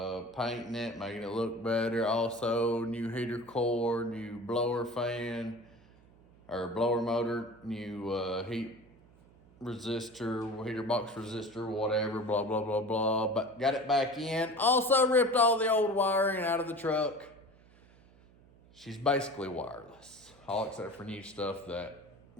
painting it, making it look better. Also, new heater core, new blower fan, or blower motor, new heat resistor, heater box resistor, whatever, blah, blah, blah, blah. But got it back in. Also ripped all the old wiring out of the truck. She's basically wireless, all except for new stuff that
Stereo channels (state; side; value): noise; right; hum, 26 dB below the sound